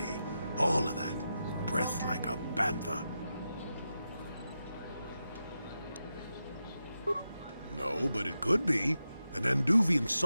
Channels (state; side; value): inverted; both; correlation -0.89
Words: all of that. Breath like a bantha. No, but it could be. An Anduvian